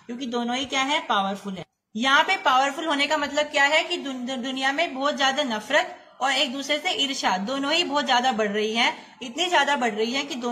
क्योंकि दोनों ही क्या है, पावरफुल है। यहाँ पे पावरफुल होने का मतलब क्या है कि दुनिया में बहुत ज्यादा नफरत और एक दूसरे से ईर्ष्या दोनों ही बहुत ज्यादा बढ़ रही है, इतनी ज्यादा बढ़ रही है कि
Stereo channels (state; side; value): identical; both; correlation 1.00